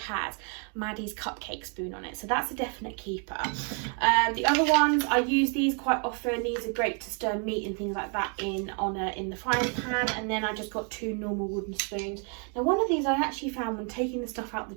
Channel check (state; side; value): quieter; left; 39.8 dB